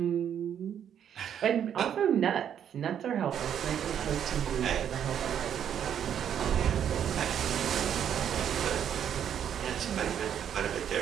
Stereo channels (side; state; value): left; quieter; 9.1 dB